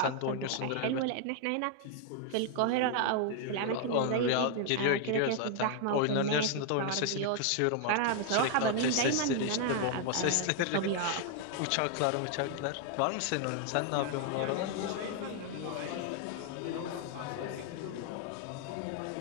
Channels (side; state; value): both; different; correlation 0.00